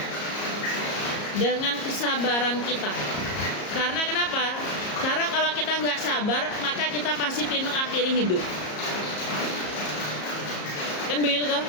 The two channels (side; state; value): right; late; 34 ms